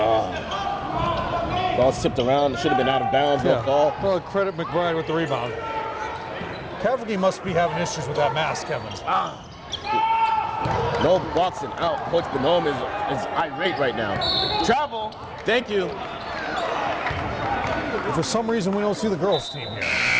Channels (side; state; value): both; identical; correlation 1.00